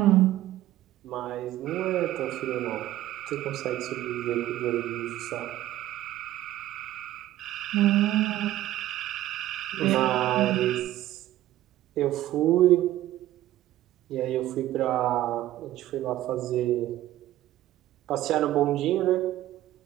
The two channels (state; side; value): quieter; left; 14.4 dB